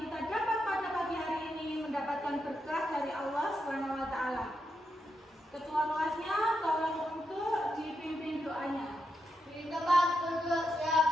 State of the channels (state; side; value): normal; both; correlation 0.84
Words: dapat pada pagi hari ini mendapatkan berkah dari Allah Subhanahu wa taala. Ketua kelasnya tolong untuk dipimpin doanya. Di tempat duduk